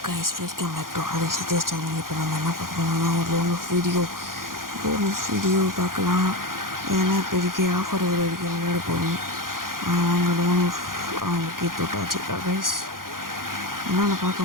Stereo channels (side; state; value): left; late; 0.91 ms